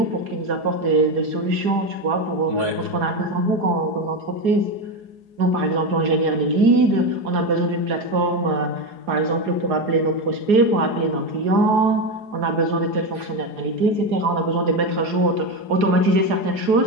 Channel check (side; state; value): left; late; 4.8 ms